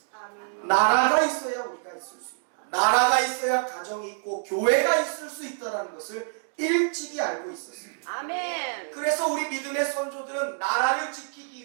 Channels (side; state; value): left; silent; digital silence